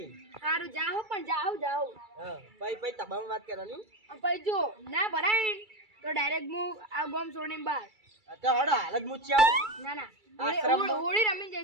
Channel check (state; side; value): late; left; 2.3 ms